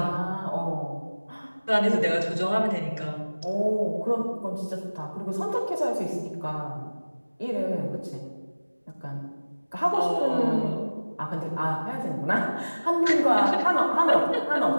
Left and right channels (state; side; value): inverted; both; correlation -1.00